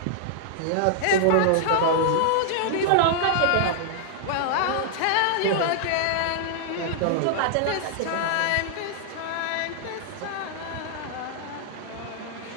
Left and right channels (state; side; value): different; both; correlation -0.01